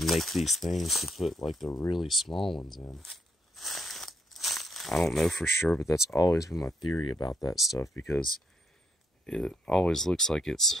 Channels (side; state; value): both; normal; correlation 0.75